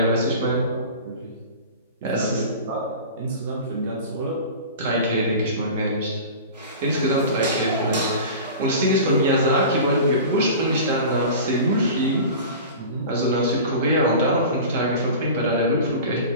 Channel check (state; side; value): inverted; both; correlation -0.35